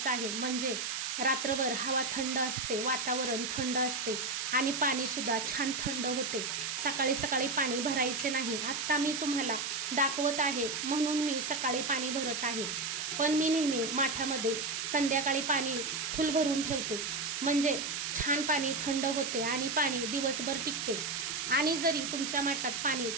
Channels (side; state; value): right; noise; hiss, 3 dB below the sound